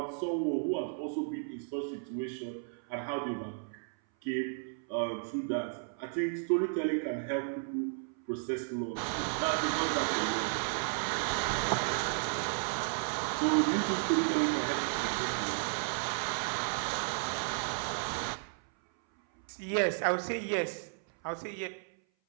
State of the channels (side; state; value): left; silent; 55 dB below the other